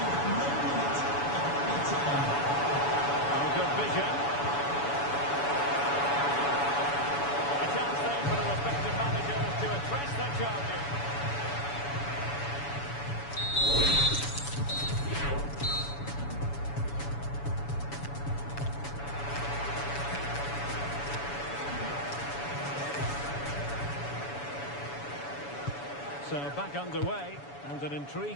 Oh, good vision. A chance then for the respective managers to address their charges. So back underway, and an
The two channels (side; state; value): right; late; 7.0 ms